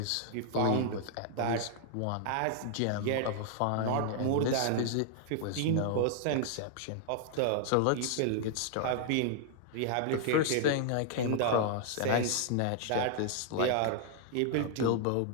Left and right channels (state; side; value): different; both; correlation 0.00